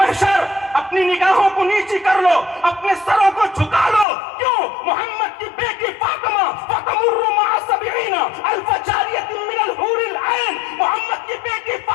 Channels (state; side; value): drops out; right; at 4.0 s